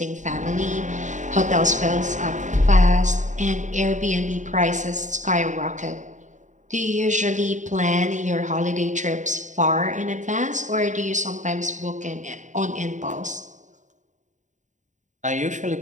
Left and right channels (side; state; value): left; late; 0.36 ms